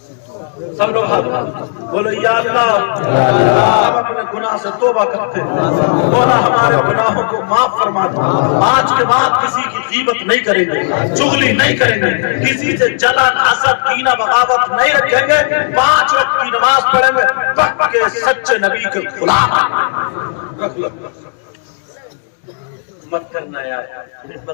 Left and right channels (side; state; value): right; silent; 68 dB below the other